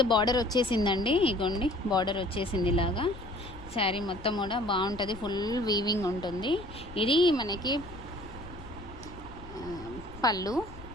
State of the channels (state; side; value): noise; left; rumble, 15 dB below the sound